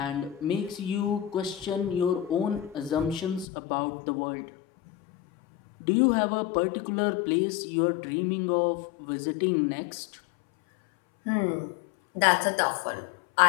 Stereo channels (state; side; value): drops out; right; at 3.5 s